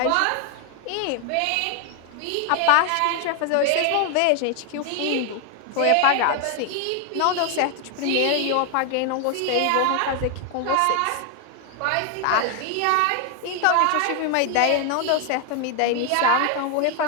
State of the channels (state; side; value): different; both; correlation 0.00